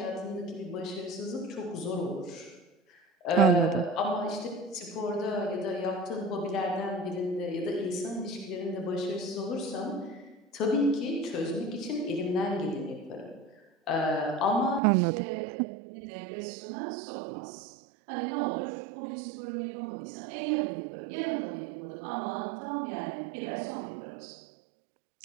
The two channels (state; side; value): drops out; left; at 14.8 s